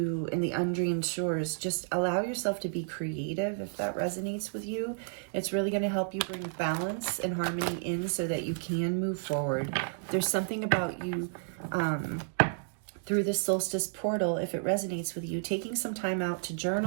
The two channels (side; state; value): left; silent; digital silence